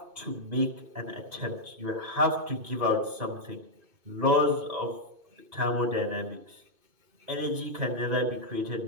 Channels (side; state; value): left; late; 2.5 ms